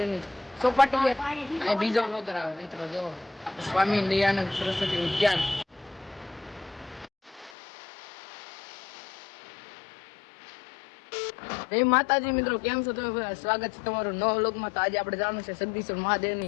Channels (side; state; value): right; drops out; at 7.5 s